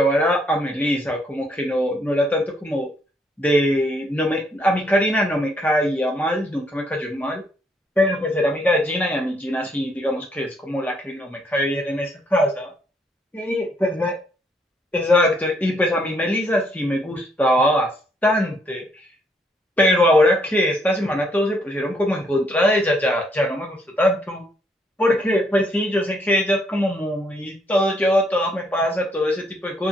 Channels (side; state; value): both; normal; correlation 0.70